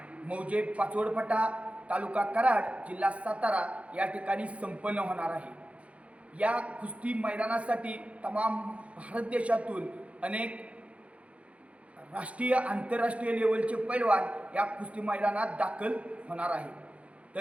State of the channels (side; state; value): left; late; 0.063 ms